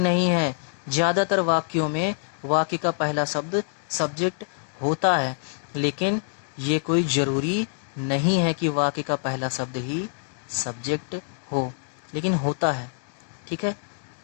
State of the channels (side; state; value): right; silent; digital silence